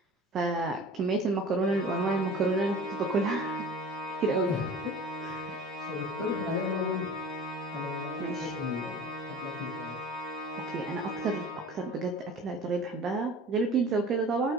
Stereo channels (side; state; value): both; normal; correlation 0.41